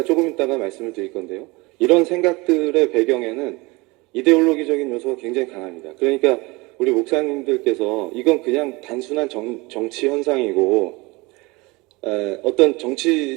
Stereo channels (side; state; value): left; quieter; 24.2 dB